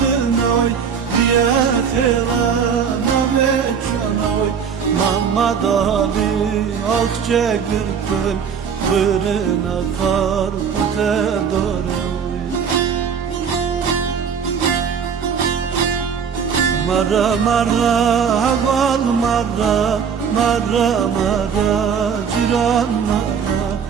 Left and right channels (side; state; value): left; quieter; 6.9 dB